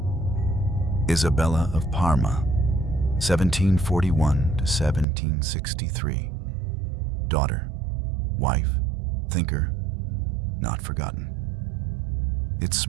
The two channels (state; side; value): drops out; left; at 5.1 s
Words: Isabella of Parma, 1741 to 1763. Daughter, wife, thinker, not forgotten. It's